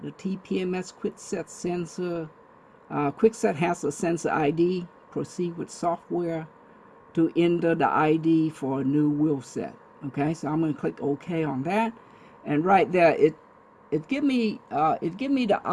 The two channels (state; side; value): identical; both; correlation 1.00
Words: The TPMS quickset sensor. Quickset has a sensor ID. Proceed with software to enter the ID for a new wheel set. Okay, so I'm going to click OK on that, and right there it give me the